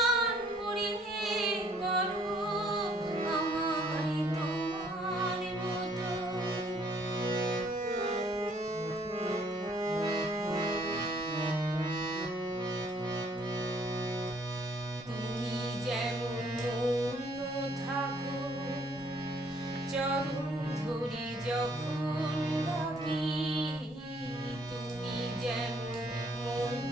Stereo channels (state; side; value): normal; both; correlation 0.63